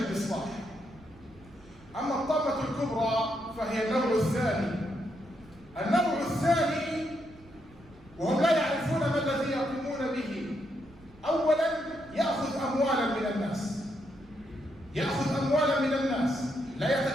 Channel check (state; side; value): noise; right; rumble, 24 dB below the sound